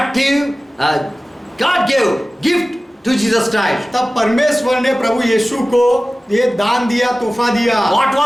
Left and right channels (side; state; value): both; normal; correlation 0.97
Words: God gave gift to Jesus Christ. तब परमेश्वर ने प्रभु यीशु को ये दान दिया, तोहफा दिया। What